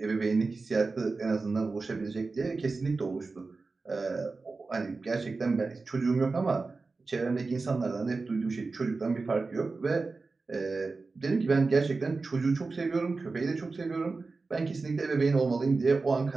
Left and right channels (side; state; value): left; quieter; 3.9 dB